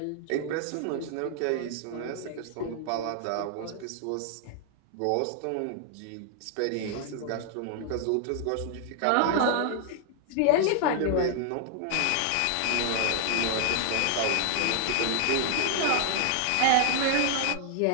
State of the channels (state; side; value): different; both; correlation 0.00